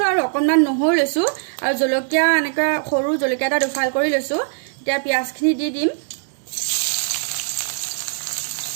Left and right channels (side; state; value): left; silent; digital silence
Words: আৰু অকনমান নহৰু লৈছো আৰু জলকীয়া এনেকৈ সৰু জলকীয়া এটা দুফাল কৰি লৈছো এতিয়া পিঁয়াজখিনি দি দিম